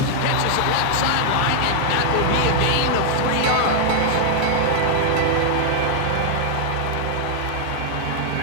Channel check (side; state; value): both; different; correlation -0.01